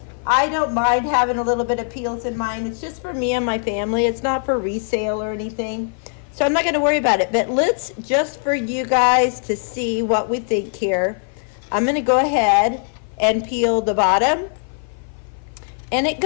I don't mind having a little bit of peels in mine. It's just for me and my family. It's not for resale or anything. So I'm not going to worry about it. But let's, just for you guys to see what we think here, I'm going to go ahead and peel the bottom. And it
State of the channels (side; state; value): right; silent; 55 dB below the other